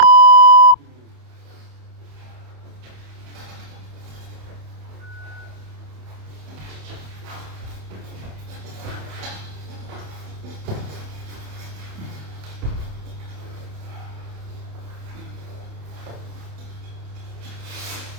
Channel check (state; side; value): late; left; 28 ms